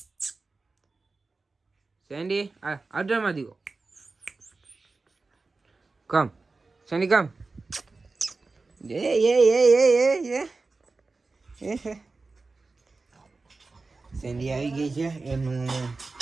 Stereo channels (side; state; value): left; quieter; 3.8 dB